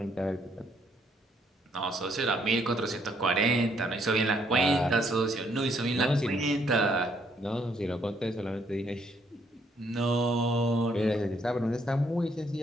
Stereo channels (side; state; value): both; normal; correlation 0.70